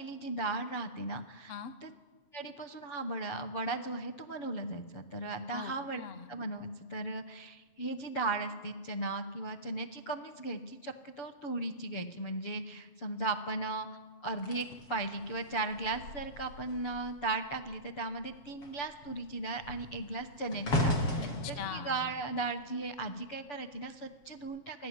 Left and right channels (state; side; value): late; right; 6.9 ms